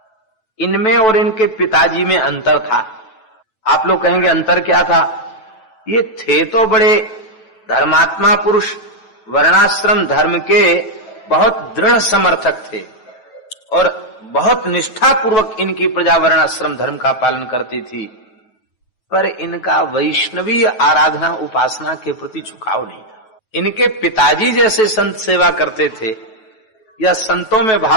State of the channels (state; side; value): late; right; 9.2 ms